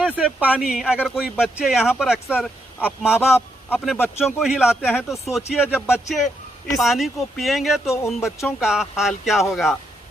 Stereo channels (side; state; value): both; normal; correlation 0.79